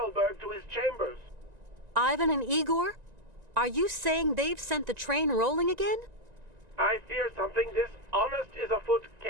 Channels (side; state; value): left; late; 1.9 ms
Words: to his chambers. Ivan and Igor? Are you saying they've sent the train rolling again? I fear something dishonest is afoot,